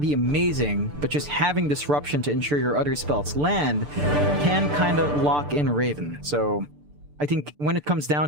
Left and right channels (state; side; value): late; left; 6.8 ms